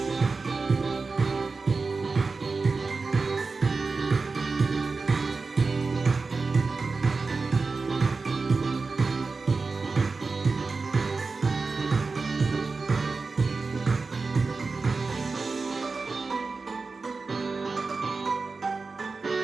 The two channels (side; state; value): left; quieter; 4.2 dB